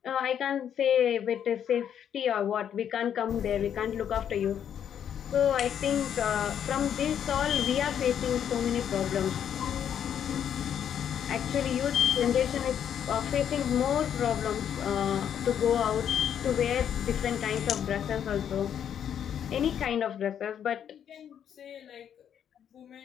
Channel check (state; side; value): quieter; right; 9.1 dB